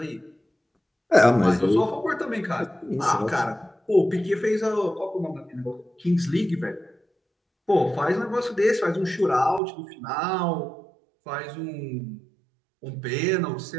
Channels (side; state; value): left; drops out; at 9.6 s